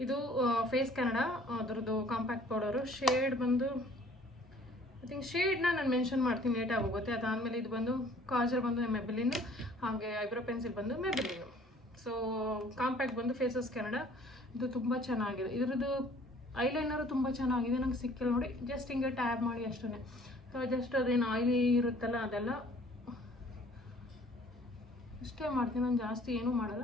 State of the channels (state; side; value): normal; both; correlation 0.55